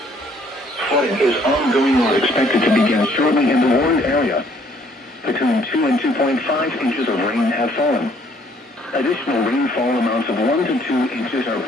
Flooding is ongoing or expected to begin shortly in the warned area. Between 2 and 2.5 inches of rain have fallen. Additional rainfall amounts of 1 to 2 inches are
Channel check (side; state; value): both; normal; correlation 0.63